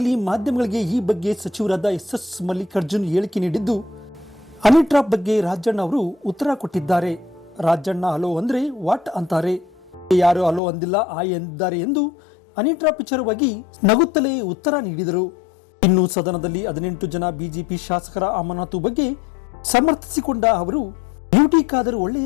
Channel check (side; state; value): right; drops out; at 10.6 s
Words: ಮಾಧ್ಯಮಗಳಿಗೆ ಈ ಬಗ್ಗೆ ಸಚಿವರಾದ ಎಸ್ ಮಲ್ಲಿಕಾರ್ಜುನ್ ಹೇಳಿಕೆ ನೀಡಿದ್ದು, ಹನಿ ಟ್ರಾಪ್ ಬಗ್ಗೆ ರಾಜಣ್ಣ ಅವರು ಉತ್ತರ ಕೊಟ್ಟಿದ್ದಾರೆ. ರಾಜಣ್ಣ ಹಲೋ ಅಂದ್ರೆ ವಾಟ್ ಅಂತಾರೆ, ಯಾರು ಹಲೋ ಅಂದಿಲ್ಲ ಆಯ್ ಎಂದಿದ್ದಾರೆ ಎಂದು ಹನಿ ಟ್ರಾಪ್ ವಿಚಾರವಾಗಿ ನಗುತ್ತಲೇ ಉತ್ತರ ನೀಡಿದರು. ಇನ್ನು ಸದನದಲ್ಲಿ 18 ಜನ ಬಿಜೆಪಿ ಶಾಸಕರ ಅಮಾನತು ಬಗ್ಗೆ ಸಮರ್ಥಿಸಿಕೊಂಡ ಅವರು, ಬ್ಯೂಟಿ ಖಾದರ್